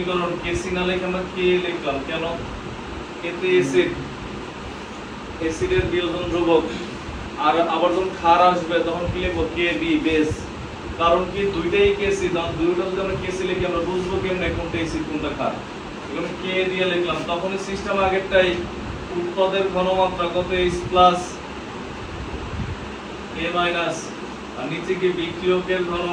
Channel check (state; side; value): identical; both; correlation 1.00